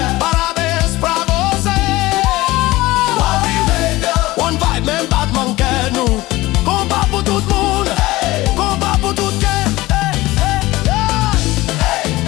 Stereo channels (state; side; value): quieter; right; 18.7 dB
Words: Parabéns pra você. One vibe, même Batman quer nous. Combat pour tout le monde, combat pour tout le monde.